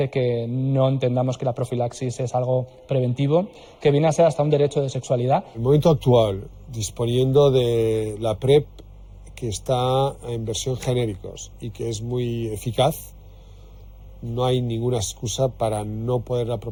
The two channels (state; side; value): identical; both; correlation 1.00